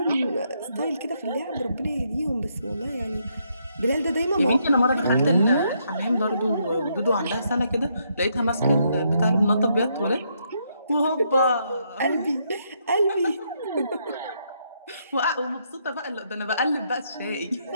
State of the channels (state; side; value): inverted; both; correlation -0.75